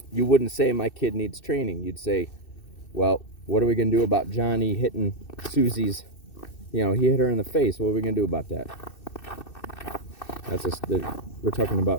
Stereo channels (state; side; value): late; right; 2.6 ms